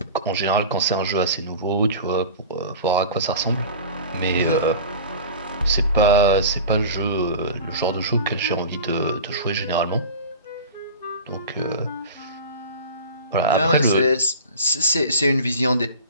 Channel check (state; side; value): inverted; both; correlation -0.36